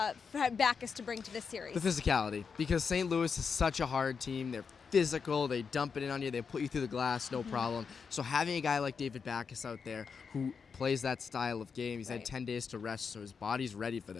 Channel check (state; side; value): quieter; right; 5.8 dB